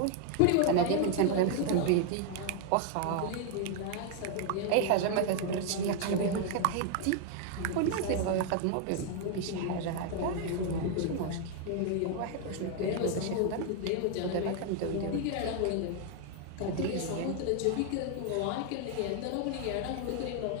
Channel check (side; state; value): both; different; correlation 0.00